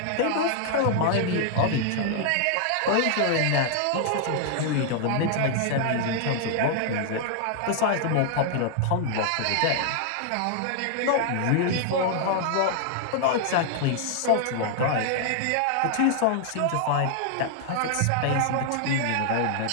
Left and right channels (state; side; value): different; both; correlation -0.01